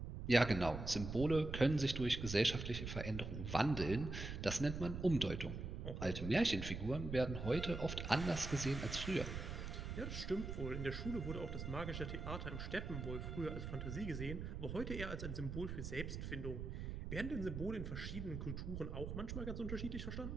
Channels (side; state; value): right; noise; rumble, 5 dB below the sound